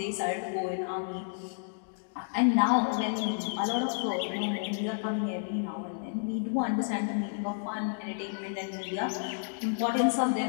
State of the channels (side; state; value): right; silent; digital silence